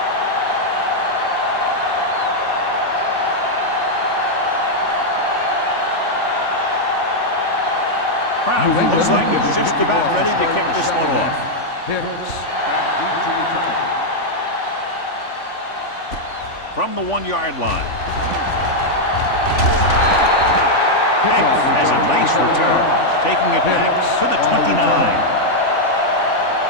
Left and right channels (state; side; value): late; right; 3.5 ms